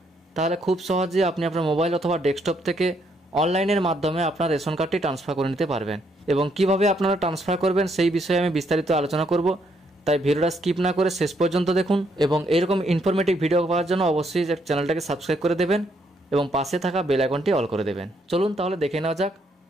তাহলে খুব সহজে আপনি আপনার মোবাইল অথবা ডেস্কটপ থেকে অনলাইনের মাধ্যমে আপনার রেশন কার্ডটি ট্রান্সফার করে নিতে পারবেন। এবং কিভাবে আপনারা ট্রান্সফার করবেন সেই বিষয়ে আমি বিস্তারিত আলোচনা করব, তাই ভিডিওটা স্কিপ না করে শেষ পর্যন্ত দেখুন। এবং এরকম ইনফরমেটিভ ভিডিও পাওয়ার জন্য অবশ্যই চ্যানেলটাকে সাবস্ক্রাইব করে দেবেন এবং পাশে থাকা বেল আইকনটি অল করে দেবেন। চলুন তাহলে দেখে নেওয়া যাক।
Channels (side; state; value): both; normal; correlation 0.73